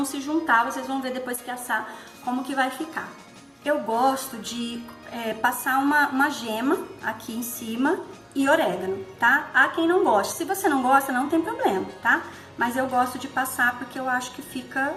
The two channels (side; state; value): both; identical; correlation 1.00